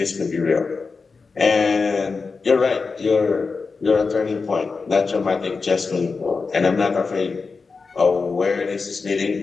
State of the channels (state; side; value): quieter; right; 4.5 dB